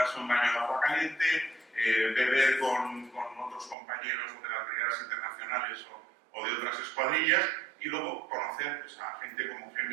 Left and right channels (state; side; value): drops out; left; at 3.8 s